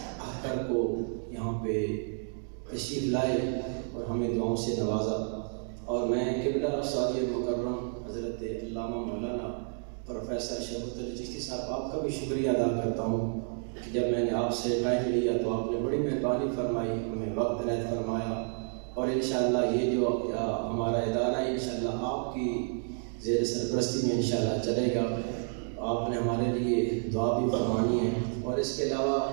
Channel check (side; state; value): left; silent; 57 dB below the other